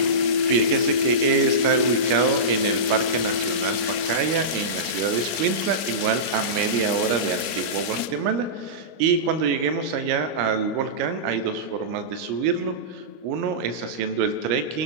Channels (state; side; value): late; left; 25 ms